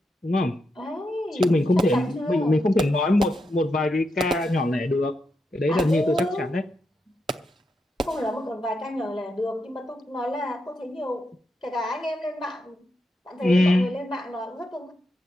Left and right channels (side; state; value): both; normal; correlation 0.84